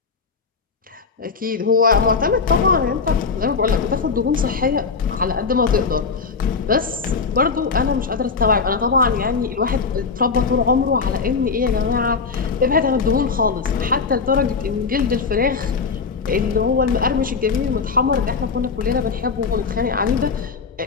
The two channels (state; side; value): quieter; right; 5.0 dB